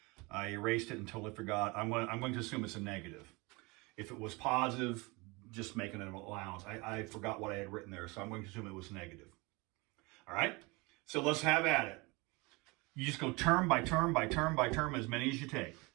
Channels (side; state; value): left; quieter; 25.8 dB